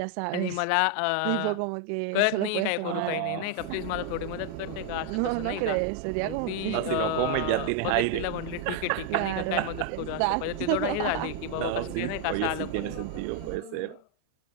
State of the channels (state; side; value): different; both; correlation 0.00